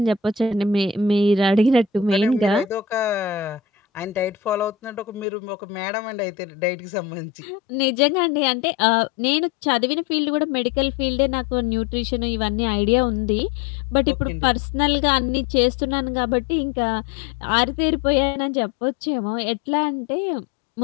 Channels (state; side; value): drops out; right; at 5.2 s